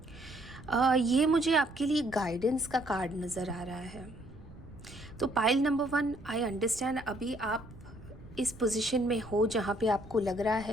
ये मुझे आपके लिए गाइडेंस का कार्ड नज़र आ रहा है। तो पाइल नंबर 1, आई अंडरस्टैंड अभी आप इस पोजीशन में हो जहाँ पे आपको लग रहा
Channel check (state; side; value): noise; right; rumble, 18 dB below the sound